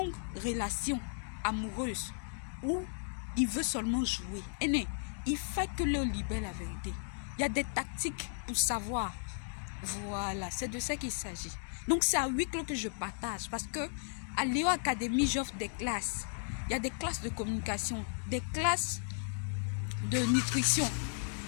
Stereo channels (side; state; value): right; silent; digital silence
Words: relation amoureuse ou il veut seulement jouer. Il faut que Léo libère la vérité. Il y a des tactiques pour savoir. Voilà, c'est de ça qu'il s'agit. Donc c'est à huis clos que je partage parce que à Léo Academy, j'offre des classes. Il y a des classes de communication, des classes de nutrition.